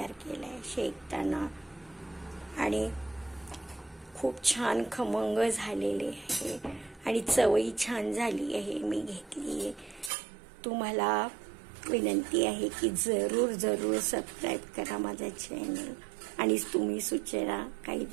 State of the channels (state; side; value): drops out; left; at 10.1 s